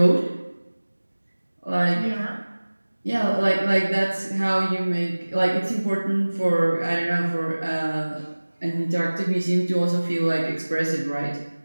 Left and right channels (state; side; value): inverted; both; correlation -1.00